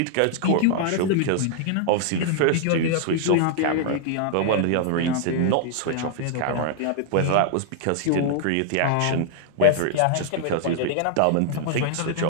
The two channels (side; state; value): both; different; correlation 0.00